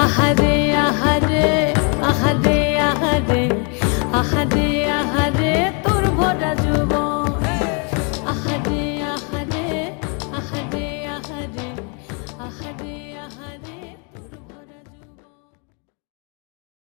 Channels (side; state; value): right; quieter; 36.8 dB